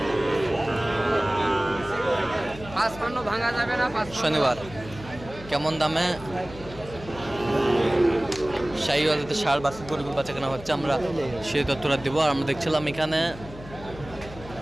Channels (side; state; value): left; noise; hum, 15 dB below the sound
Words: ভাঙা যাবে না। শনিবার। কেমন দামে শাহিওয়ালাতে ষাঁড় বাছুর গরুগুলো বাচ্চা কেনা হচ্ছে, আমরা সেই তথ্যটা দেবো। আর আমরা দেখছিলাম এখানে